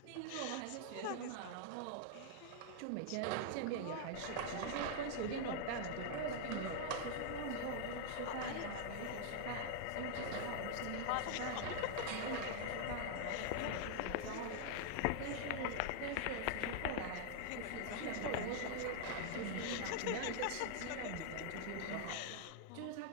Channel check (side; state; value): both; different; correlation 0.00